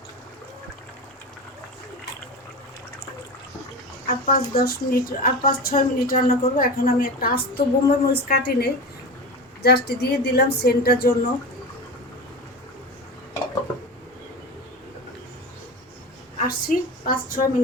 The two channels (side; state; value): both; normal; correlation 0.27